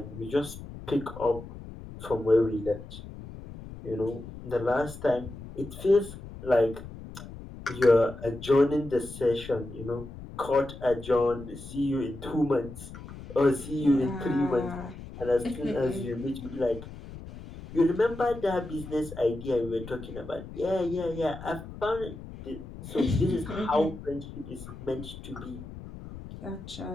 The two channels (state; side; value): noise; left; rumble, 13 dB below the sound